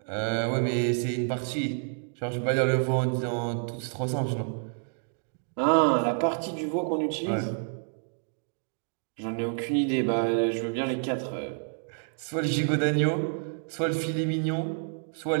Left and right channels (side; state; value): left; silent; 59 dB below the other